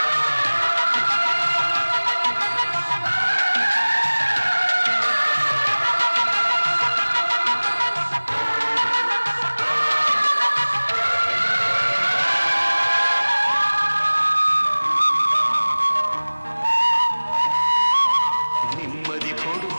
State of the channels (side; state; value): both; inverted; correlation -1.00